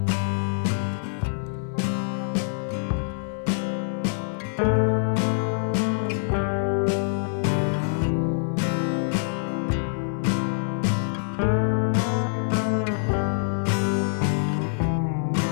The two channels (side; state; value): right; silent; digital silence